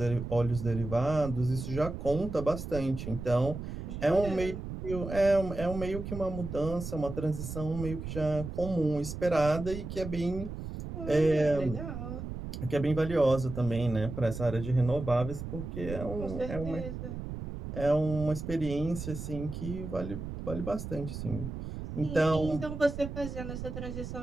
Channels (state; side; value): noise; right; rumble, 7 dB below the sound